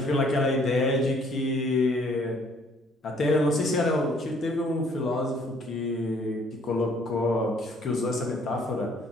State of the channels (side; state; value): both; normal; correlation 0.61